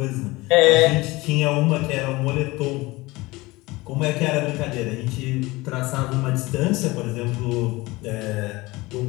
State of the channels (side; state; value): right; quieter; 21.4 dB